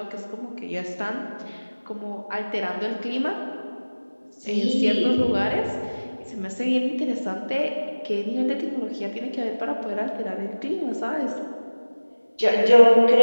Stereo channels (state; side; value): inverted; both; correlation -1.00